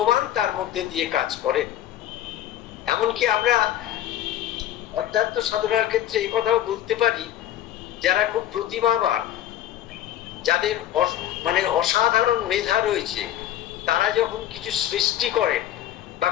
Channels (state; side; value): quieter; right; 12.2 dB